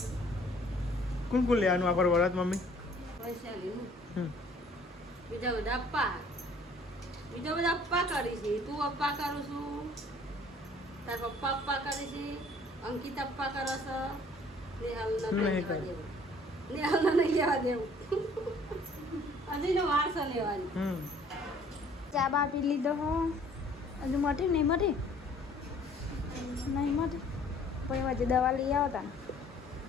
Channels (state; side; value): normal; both; correlation 0.56